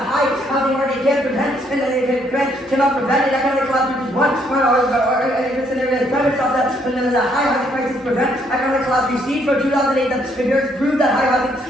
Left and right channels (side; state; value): both; normal; correlation 0.69